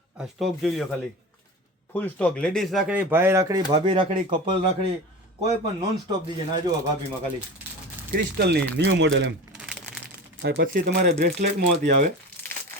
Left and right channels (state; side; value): normal; both; correlation 0.31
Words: આ સ્ટોક જોઈ લો ખાલી, ફૂલ સ્ટોક. લેડીઝ રાખડી, ભાઈ રાખડી, ભાભી રાખડી, કપલ રાખડી, કોઈ પણ નોન સ્ટોપ દીજે. ના જુઓ ભાભીમાં ખાલી ક્રિસ્ટલની ન્યૂ મોડેલ એમ. અને પછી તમારે બ્રેસલેટમાં હતી આવે